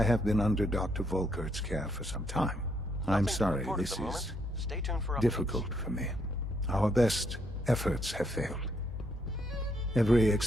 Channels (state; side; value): normal; both; correlation 0.73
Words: have been under Dr. Volkert's care for some time. I'm sorry, this is difficult for me. Our best efforts have failed. Every